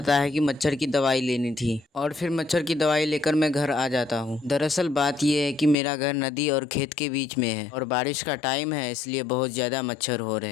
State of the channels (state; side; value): drops out; right; at 5.8 s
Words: है कि मच्छर की दवाई लेनी थी और फिर मच्छर की दवाई लेकर मैं घर आ जाता हूँ। दरअसल बात यह है कि मेरा घर नदी और खेत के बीच में है और बारिश का टाइम है, इसलिए बहुत ज्यादा मच्छर हो रहे हैं।